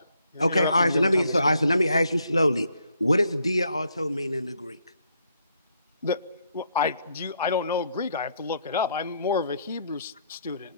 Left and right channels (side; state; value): both; inverted; correlation -0.72